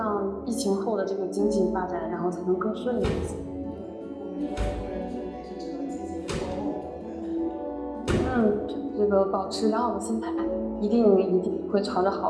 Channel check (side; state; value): both; identical; correlation 1.00